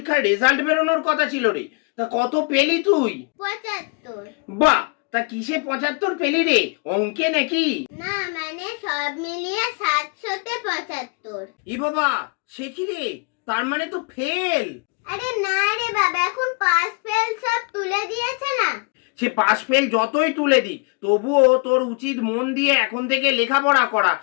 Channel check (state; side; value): quieter; right; 33.0 dB